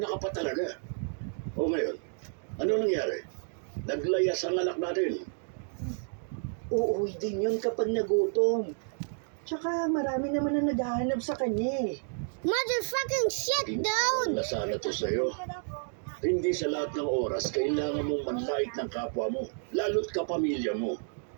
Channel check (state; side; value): silent; left; 57 dB below the other